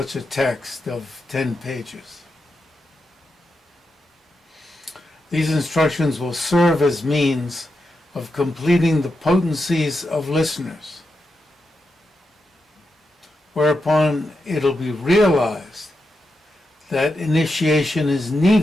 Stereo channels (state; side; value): normal; both; correlation 0.87